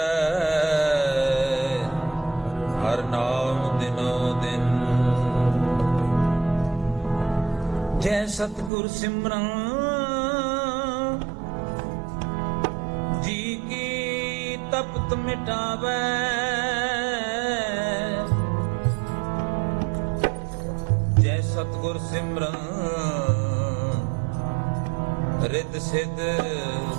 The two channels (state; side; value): drops out; left; at 8.7 s